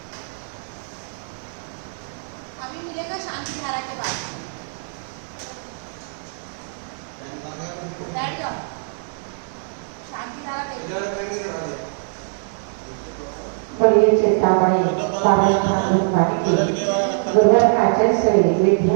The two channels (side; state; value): left; silent; digital silence